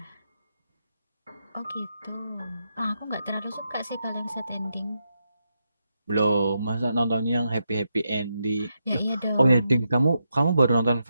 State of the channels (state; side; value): inverted; both; correlation -0.84